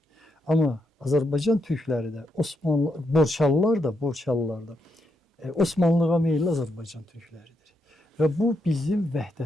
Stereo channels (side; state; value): both; normal; correlation 0.80